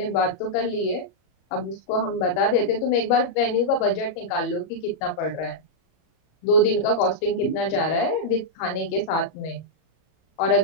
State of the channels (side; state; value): right; late; 34 ms